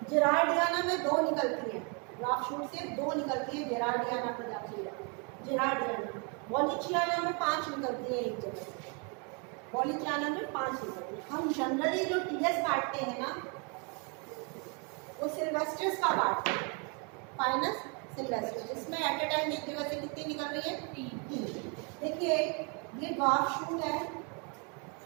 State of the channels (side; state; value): left; quieter; 35.1 dB